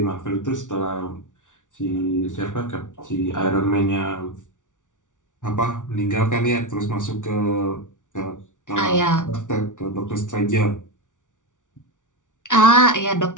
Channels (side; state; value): right; late; 0.87 ms